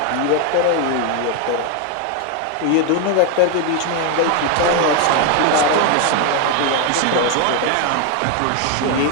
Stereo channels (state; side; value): different; both; correlation 0.01